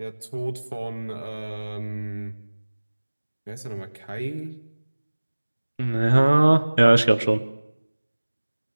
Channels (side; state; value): both; inverted; correlation -1.00